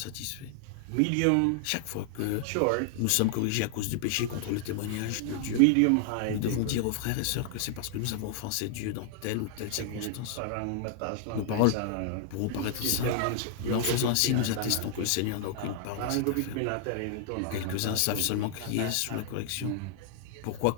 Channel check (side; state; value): both; different; correlation 0.00